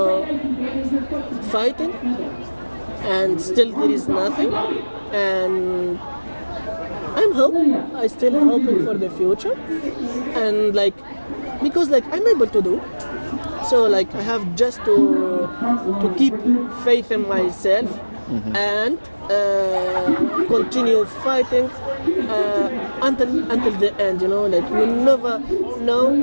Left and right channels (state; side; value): inverted; both; correlation -1.00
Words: fighting, and still there is nothing, and I still hoping for the future, and like because like I'm able to do, so like I have just to keep faith in myself, and continue fighting until the end. Like you never know